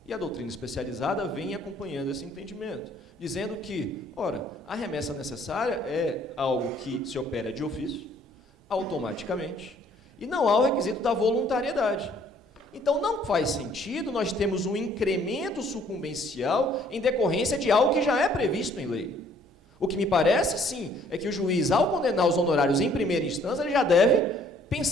E a doutrina especializada vem acompanhando esse entendimento, dizendo que, ora, a remessa necessária é algo que se opera de ofício, automaticamente, e não há o requisito da voluntariedade. Então, não faz sentido nós termos um incremento sucumbencial em decorrência de algo que já é previsto em lei. O que me parece, sim, é que o juiz, ao condenar os honorários em primeira instância, ele já deve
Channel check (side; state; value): both; normal; correlation 0.60